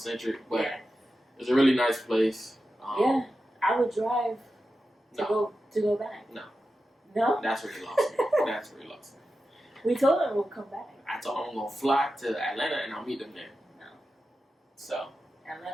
but it's a really nice place. Yeah, I would drive to go back. No. That's where you lost me. That's where you lost me. We told them we'll come back. I told them I'm gonna fly to Atlanta and I'll meet them there. No. So.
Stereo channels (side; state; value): both; normal; correlation 0.91